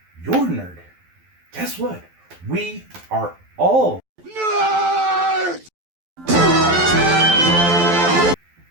You're a nerd. Guess what? We are all.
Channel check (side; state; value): left; late; 12 ms